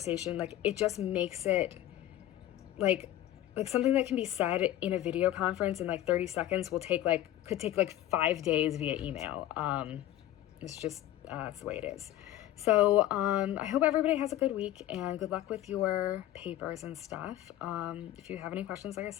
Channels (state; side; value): quieter; right; 13.5 dB